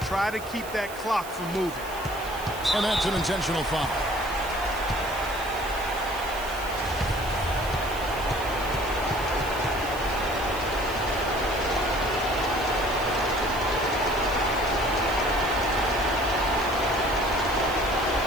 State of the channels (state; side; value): noise; right; hiss, 15 dB below the sound